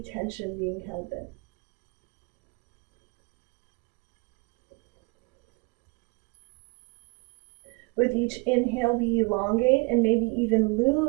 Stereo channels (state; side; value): quieter; left; 30.2 dB